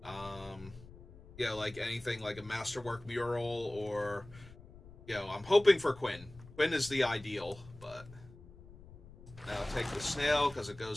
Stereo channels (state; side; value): noise; left; rumble, 20 dB below the sound